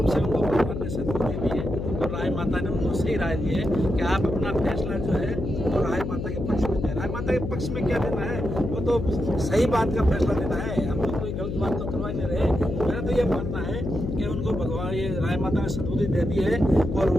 से उनको भगवान ने सद्बुद्धि दी है और राय माता ने उनको सही राय दी है कि आप अपना फैसला जो है वो राय माता के पक्ष में दें। राय माता के पक्ष में क्या देना है, वो तो सही बात का फैसला देना है, हम तो कोई गलत बात तो करवा नहीं रहे। मेरा तो ये मानना है कि उनको भगवान ये राय माता ने सद्बुद्धि दे दी है, और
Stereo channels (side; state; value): left; noise; hum, 4 dB below the sound